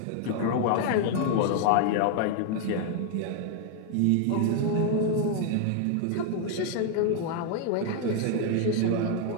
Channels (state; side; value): different; both; correlation 0.00